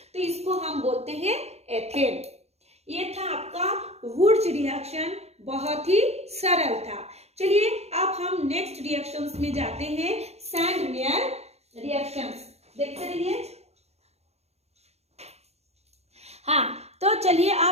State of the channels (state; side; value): late; left; 0.31 ms